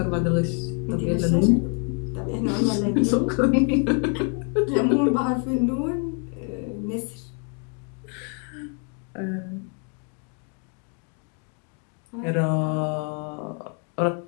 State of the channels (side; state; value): right; quieter; 39.2 dB